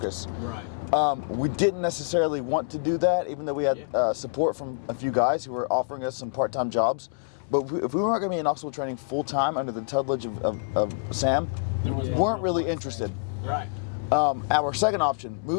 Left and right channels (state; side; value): quieter; right; 36.7 dB